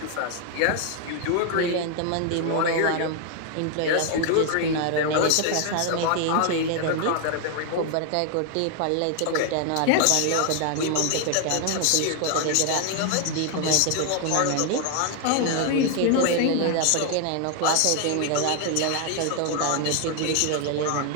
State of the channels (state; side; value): different; both; correlation 0.00